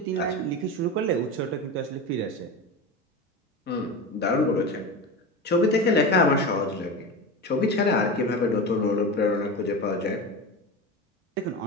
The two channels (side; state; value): both; normal; correlation 0.25